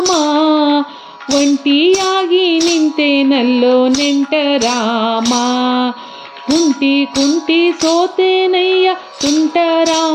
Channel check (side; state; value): both; identical; correlation 1.00